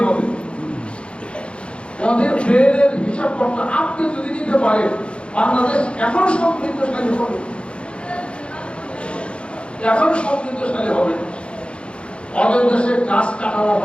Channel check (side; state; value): right; late; 0.058 ms